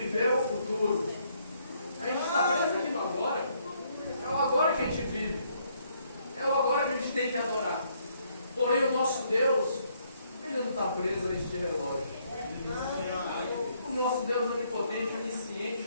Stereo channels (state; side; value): inverted; both; correlation -0.70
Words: o futuro. A gente está preso aqui no agora. É o agora que a gente vive. É o agora que a gente tem que adorar. Porém, o nosso Deus, ele não está preso a este relógio. O nosso Deus onipotente, onisciente,